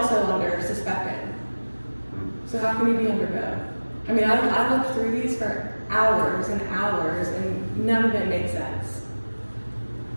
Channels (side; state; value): both; inverted; correlation -1.00